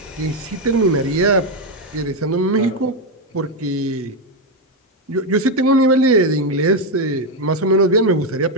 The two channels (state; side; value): normal; both; correlation 0.06